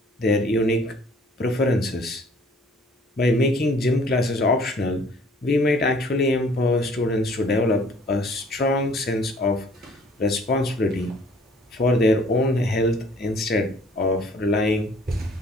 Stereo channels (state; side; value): normal; both; correlation 0.55